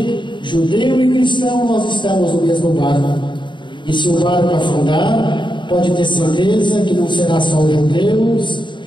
judeu e cristão, nós estamos no mesmo barco. E se o barco afundar, pode ter certeza que não será só os judeus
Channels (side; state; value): right; late; 0.23 ms